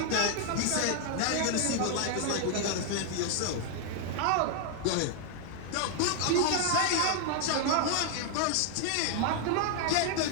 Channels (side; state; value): both; different; correlation 0.00